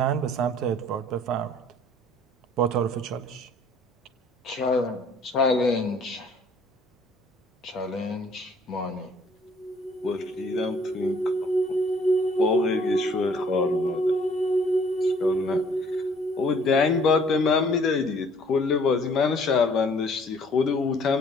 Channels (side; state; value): both; normal; correlation 0.58